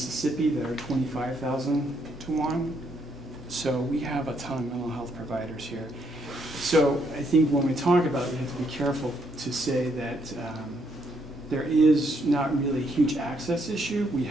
that are 25,000 to 1. So we have a ton of mental health providers here. So I think when we talk about it, we have to be careful to say that there is not really a huge access issue. We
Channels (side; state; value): both; normal; correlation 0.73